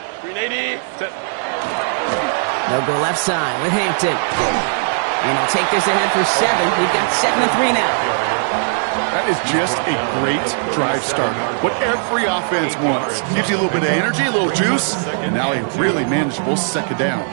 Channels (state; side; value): silent; left; digital silence